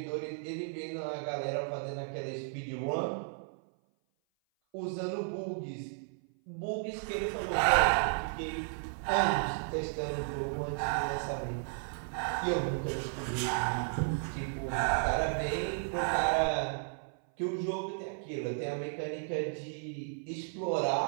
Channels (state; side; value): silent; left; 55 dB below the other